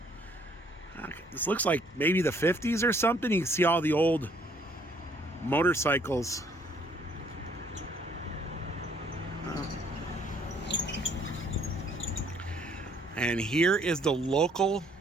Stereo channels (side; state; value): both; normal; correlation 0.63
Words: This looks like maybe the 50s or something. You can see all the old motorcycles. And here is the local